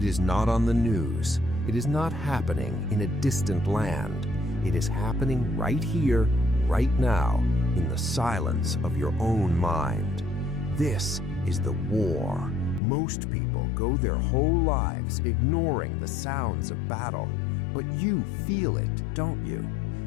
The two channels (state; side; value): drops out; right; at 12.8 s